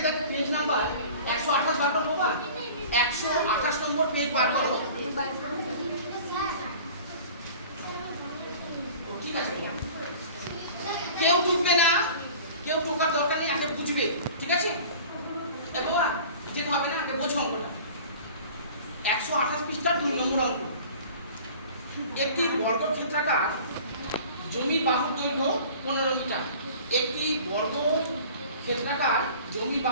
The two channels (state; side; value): inverted; both; correlation -0.43